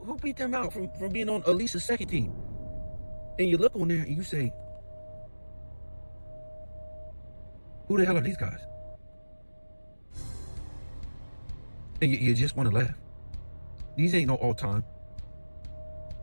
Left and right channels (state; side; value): inverted; both; correlation -1.00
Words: beat them out from being on at least a second team? And you look on there and you say, who the hell are these guys? And you just want to laugh. These ain't no all-time